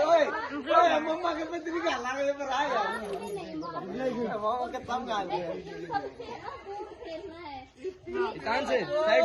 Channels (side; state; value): both; identical; correlation 1.00